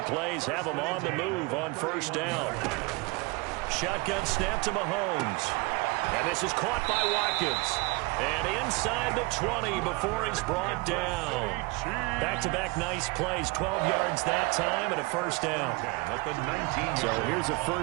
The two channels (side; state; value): left; quieter; 26.2 dB